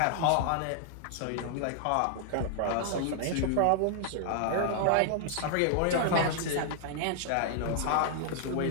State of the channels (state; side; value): different; both; correlation -0.01